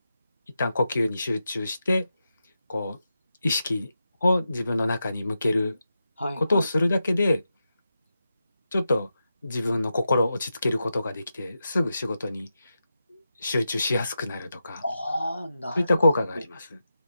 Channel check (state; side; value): inverted; both; correlation -0.89